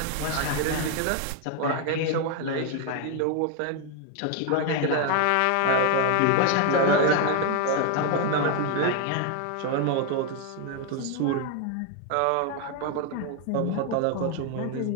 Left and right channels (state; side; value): different; both; correlation 0.01